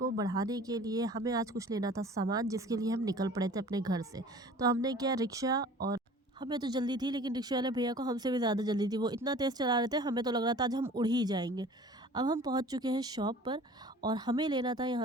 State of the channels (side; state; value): both; normal; correlation 0.45